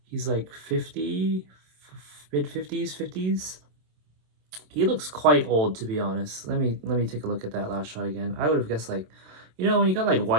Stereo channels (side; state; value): left; late; 27 ms